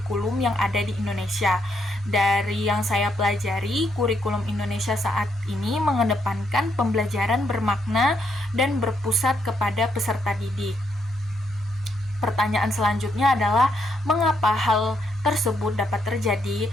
yang ada di Indonesia. Dari yang saya pelajari, kurikulum Indonesia saat ini mengedepankan pembelajaran bermakna dan berpusat kepada peserta didik. Pertanyaan selanjutnya adalah mengapa hal tersebut dapat terjadi?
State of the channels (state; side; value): normal; both; correlation 0.76